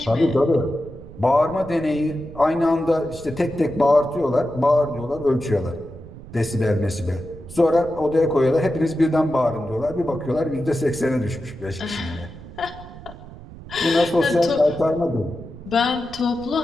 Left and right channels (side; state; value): right; noise; rumble, 16 dB below the sound